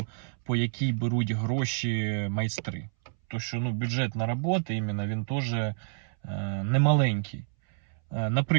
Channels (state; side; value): silent; left; 59 dB below the other